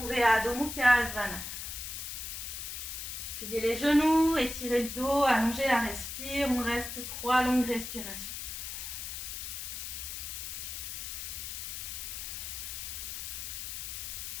Adho Mukha Svanasana. Pliez les genoux, étirez le dos, allongez la respire, on reste 3 longues respirations.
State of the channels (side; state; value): left; noise; hiss, 6 dB below the sound